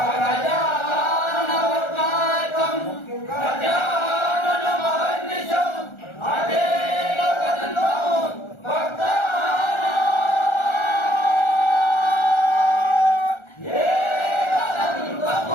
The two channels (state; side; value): late; right; 1.4 ms